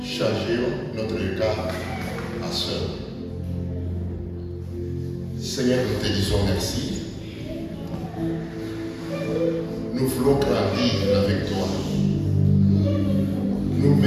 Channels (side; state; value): both; identical; correlation 1.00